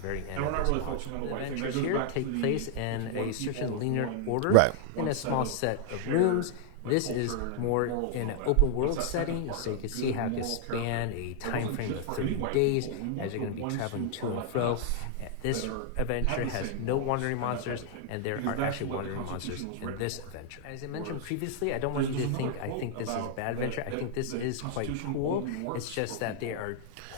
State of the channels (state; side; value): different; both; correlation 0.00